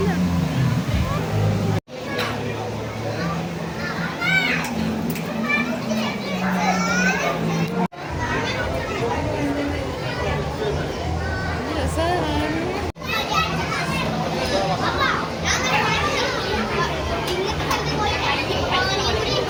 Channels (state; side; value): identical; both; correlation 1.00